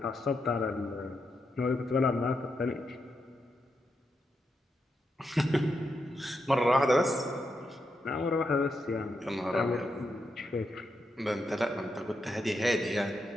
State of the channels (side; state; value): both; normal; correlation 0.83